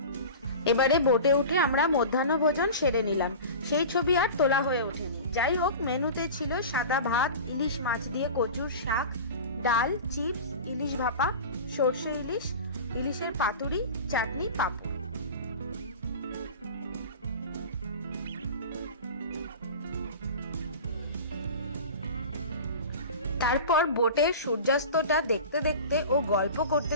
এবারে বোটে উঠে আমরা মধ্যাহ্ন ভোজন সেরে নিলাম। সেই ছবি আর তোলা হয়ে ওঠেনি। যাই হোক, মেনুতে ছিল সাদা ভাত, ইলিশ মাছ দিয়ে কচুর শাক, ডাল, চিপস, ইলিশ ভাপা, সর্ষে ইলিশ, ইলিশের পাতুরি, চাটনি, পাঁপড়। তারপর বোটের সূর্যাস্তটা দেখতে দেখতে ও গল্প করতে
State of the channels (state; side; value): inverted; both; correlation -0.33